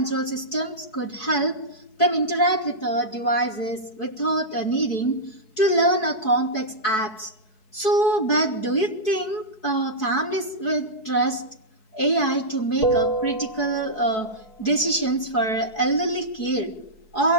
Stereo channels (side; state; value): right; late; 4.7 ms